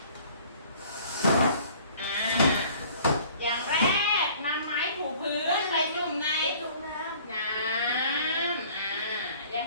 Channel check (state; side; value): inverted; both; correlation -0.52